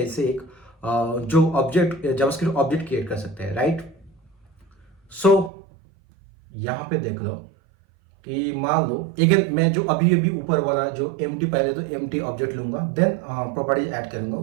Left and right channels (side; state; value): left; drops out; at 5.5 s